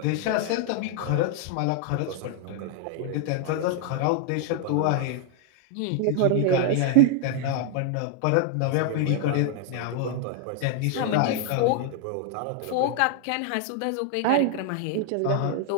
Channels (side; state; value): both; different; correlation 0.00